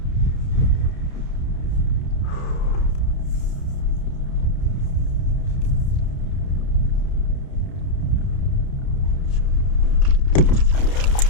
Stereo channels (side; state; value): right; late; 30 ms